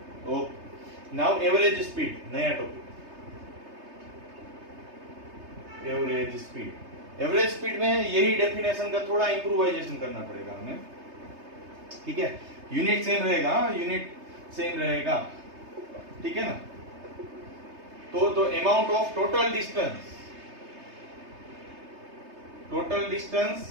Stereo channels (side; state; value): left; late; 3.3 ms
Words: Okay, now average speed, नया topic, average speed. Average speed में यही डेफिनेशन का थोड़ा इंप्रूवाइजेशन करना पड़ेगा हमें, ठीक है। यूनिट सेम रहेगा, यूनिट सेम रहेगा, ठीक है ना। तो amount of total distance